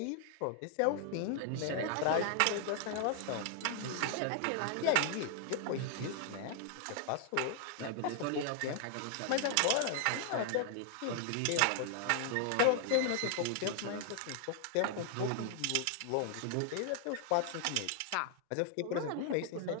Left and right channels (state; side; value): different; both; correlation 0.00